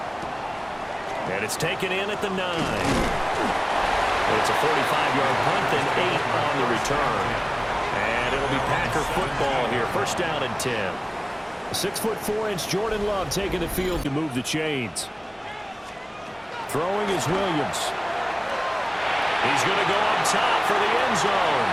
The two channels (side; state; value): both; identical; correlation 1.00